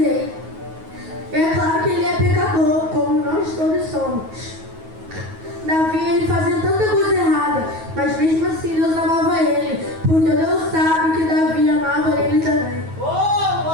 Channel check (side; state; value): left; late; 9.3 ms